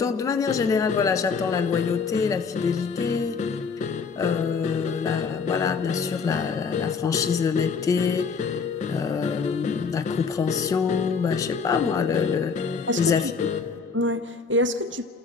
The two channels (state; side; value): quieter; right; 5.2 dB